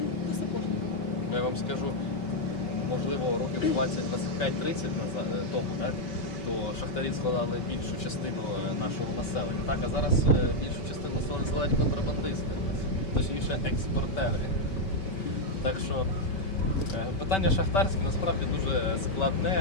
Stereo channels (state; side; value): late; right; 5.2 ms